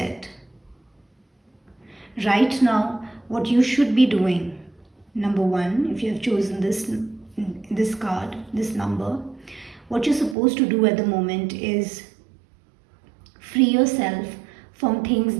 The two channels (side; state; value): left; drops out; at 10.4 s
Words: Right now, what you should be doing, number 1, if you have chosen this card, this number, what you're supposed to do at the moment is free yourself from things